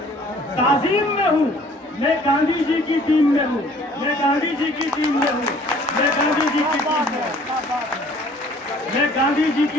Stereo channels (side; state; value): both; normal; correlation 0.55